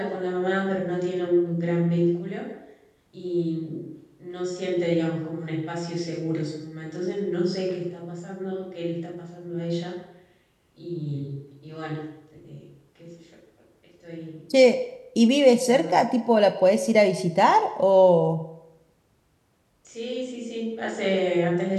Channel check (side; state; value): both; identical; correlation 1.00